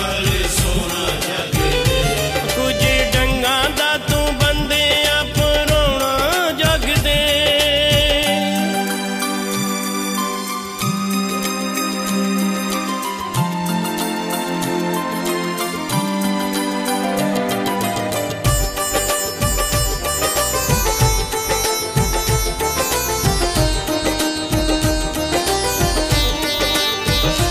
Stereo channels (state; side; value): identical; both; correlation 1.00